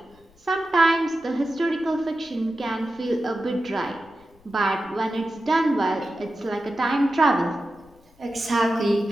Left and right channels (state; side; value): noise; left; rumble, 29 dB below the sound